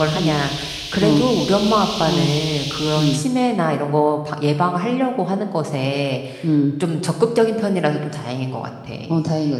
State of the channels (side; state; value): both; identical; correlation 1.00